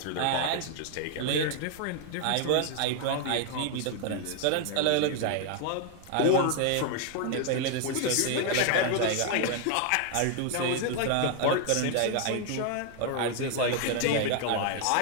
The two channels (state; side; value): different; both; correlation 0.00